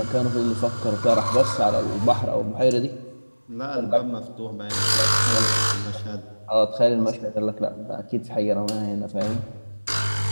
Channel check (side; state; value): both; inverted; correlation -1.00